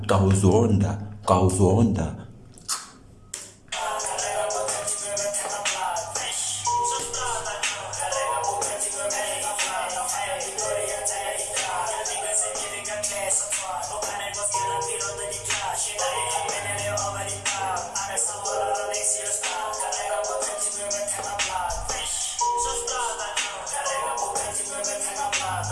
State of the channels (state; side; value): identical; both; correlation 1.00